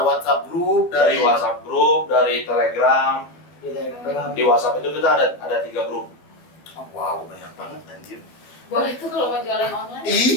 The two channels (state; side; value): late; right; 12 ms